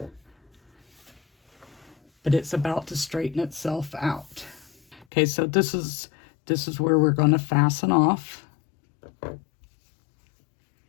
but it's about to straighten itself out. Okay, so this is where we're going to fasten off.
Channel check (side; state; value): right; drops out; at 5.1 s